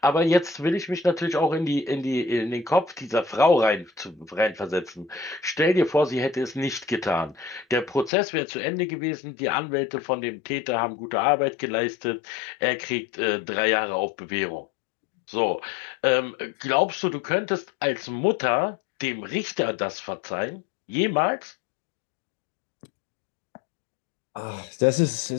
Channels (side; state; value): right; drops out; at 8.1 s